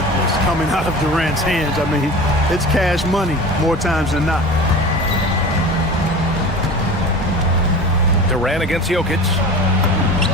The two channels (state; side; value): normal; both; correlation 0.35